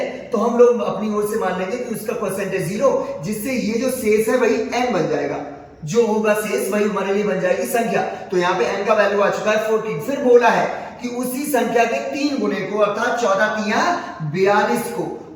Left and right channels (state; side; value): identical; both; correlation 1.00